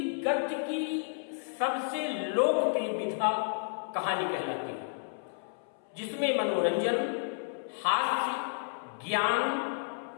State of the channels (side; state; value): right; silent; 57 dB below the other